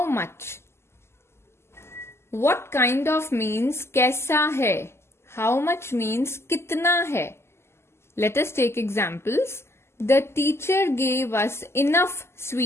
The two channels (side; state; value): right; late; 0.12 ms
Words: much. What kind of means कैसा है. How much means कितना है. Let us take examples. The teacher gave us enough